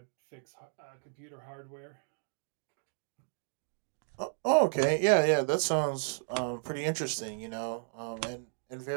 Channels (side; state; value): left; silent; digital silence